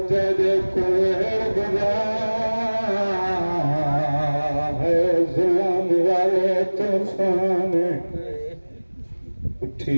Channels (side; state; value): both; inverted; correlation -1.00